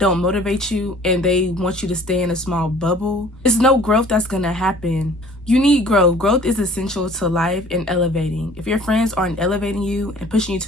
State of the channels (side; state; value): both; normal; correlation 0.51